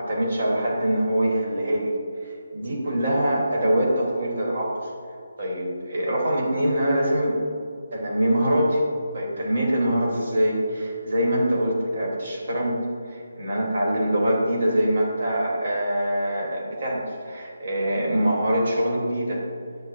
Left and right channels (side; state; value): both; inverted; correlation -0.87